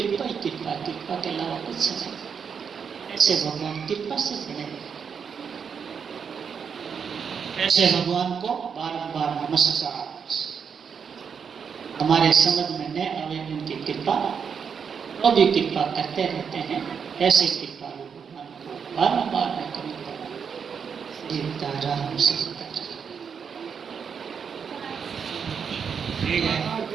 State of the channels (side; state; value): left; quieter; 6.7 dB